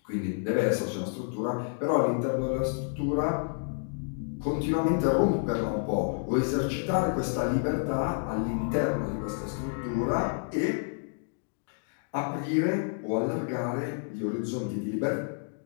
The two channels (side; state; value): right; silent; digital silence